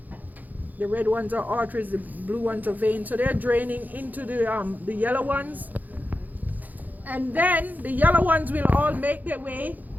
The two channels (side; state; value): left; late; 0.082 ms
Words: The red ones are arteries, the blue ones are veins. So they're draining into the yellow ones. And then the yellow ones will all make their way